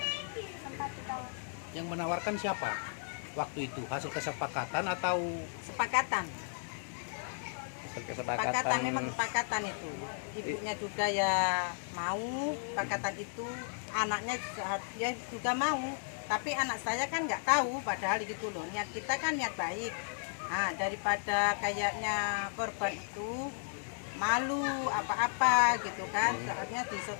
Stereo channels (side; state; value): right; silent; digital silence